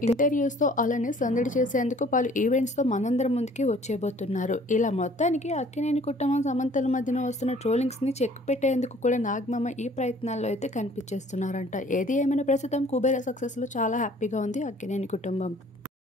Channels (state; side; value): normal; both; correlation 0.54